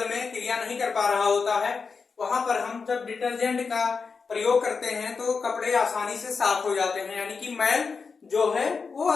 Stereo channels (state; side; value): quieter; right; 5.1 dB